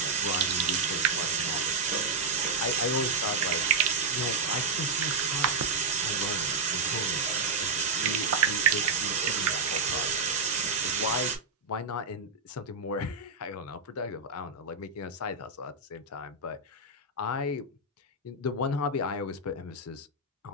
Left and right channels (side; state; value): left; quieter; 3.9 dB